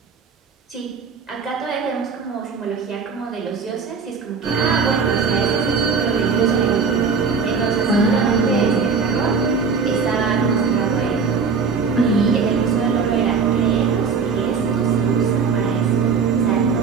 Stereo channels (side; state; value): left; quieter; 5.5 dB